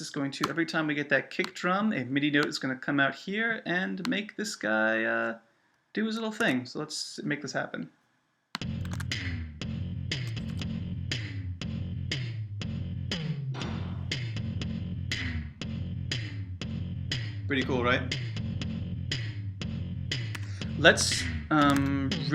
going to, every time we get that kick drum, a MIDI note is going to come out here and make this guy do his little thing. So let's make this happen. Pretty cool, right? Let's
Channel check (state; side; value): identical; both; correlation 1.00